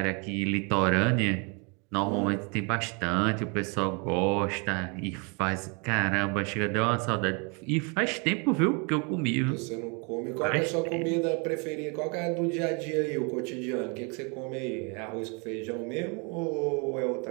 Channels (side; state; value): left; quieter; 33.4 dB